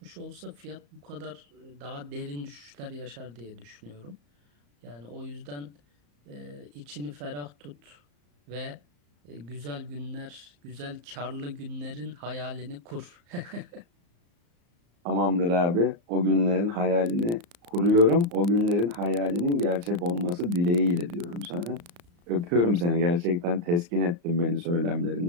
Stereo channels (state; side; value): late; left; 34 ms